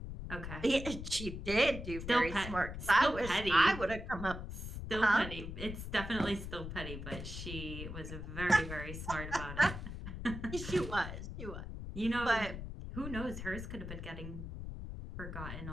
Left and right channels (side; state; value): left; noise; rumble, 8 dB below the sound